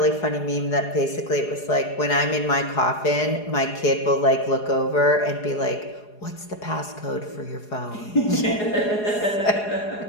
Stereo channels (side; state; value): right; late; 4.8 ms